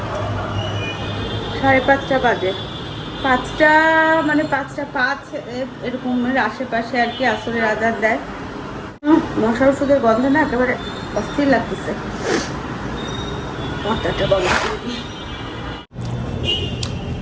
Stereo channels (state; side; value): identical; both; correlation 1.00